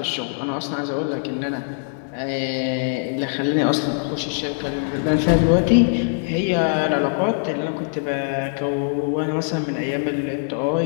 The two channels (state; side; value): silent; right; digital silence